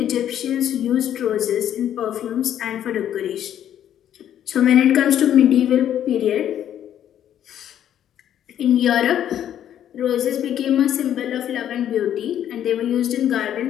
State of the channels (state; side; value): quieter; right; 10.5 dB